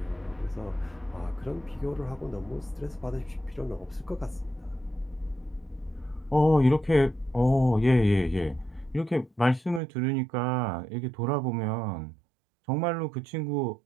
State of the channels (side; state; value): left; drops out; at 9.8 s